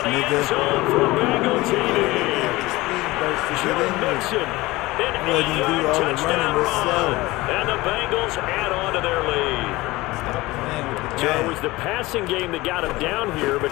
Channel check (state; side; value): quieter; right; 20.0 dB